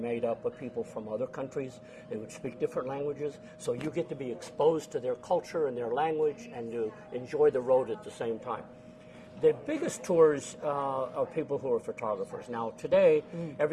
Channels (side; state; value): both; identical; correlation 1.00